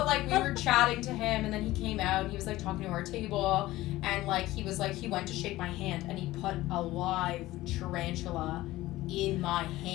like we were chatting to him, and then he came out and he was like talking to our table, and like he was like he went to shake my hand and he put a live tarantula in my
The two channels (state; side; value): quieter; right; 17.1 dB